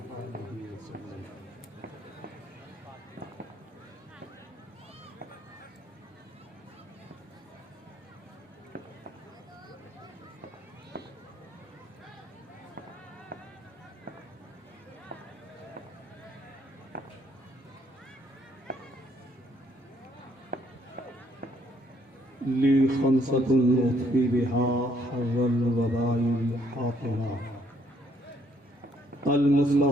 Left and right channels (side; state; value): both; normal; correlation 0.68